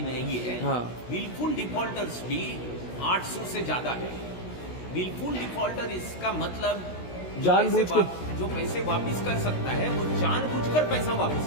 है। हाँ। विलफुल डिफॉल्टर्स भी 800 से ज्यादा है। विलफुल डिफॉल्टर इसका मतलब जानबूझ के जो पैसे वापस कर सकता है वो जानबूझकर पैसा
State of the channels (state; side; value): late; right; 16 ms